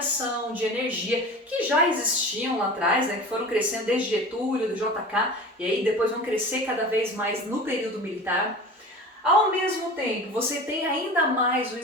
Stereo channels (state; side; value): normal; both; correlation 0.36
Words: de energia, que já existiam lá atrás, né, que foram crescendo desde Getúlio, do JK, e aí depois vão crescer cada vez mais no período militar. Ao mesmo tempo, você tem ainda mais o